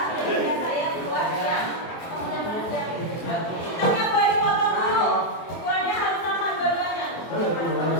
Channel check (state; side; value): late; right; 24 ms